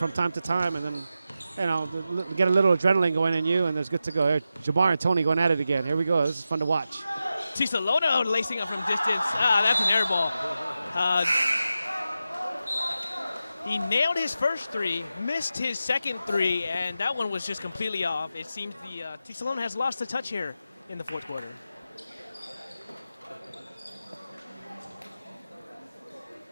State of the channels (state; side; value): inverted; both; correlation -0.91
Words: time to time, and then, you know, get a little adrenaline going in you, and it's good to go. Here, Jamar and Tony going at it again. Here we go. This is fun to watch. Tisalona lacing up from distance. That's an air ball. He nailed his first three, missed his second three, and that one was just completely off. It seems the Tisalona has lost the touch here in the fourth quarter.